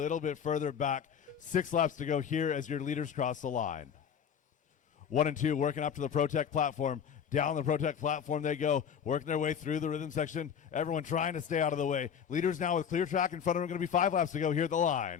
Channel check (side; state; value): right; quieter; 7.7 dB